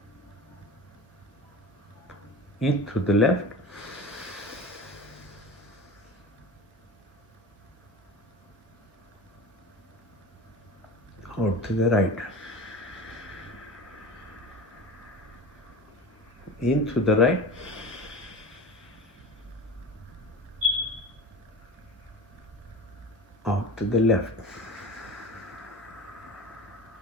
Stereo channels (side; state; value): both; normal; correlation 0.32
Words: In to the left, out to the right. In to the right, out to the left.